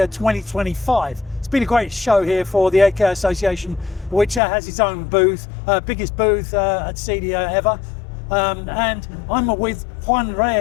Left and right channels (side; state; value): right; drops out; at 4.4 s